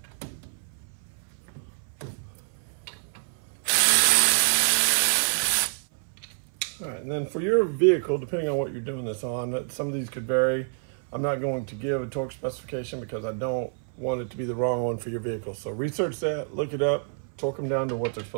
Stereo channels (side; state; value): left; silent; 60 dB below the other